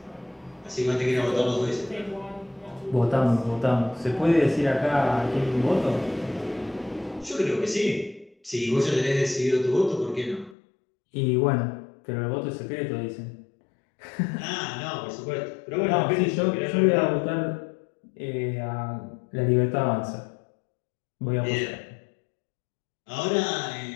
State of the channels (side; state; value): right; drops out; at 10.6 s